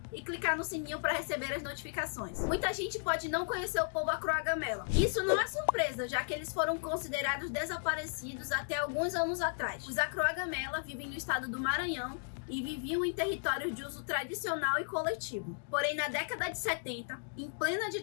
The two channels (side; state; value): right; silent; digital silence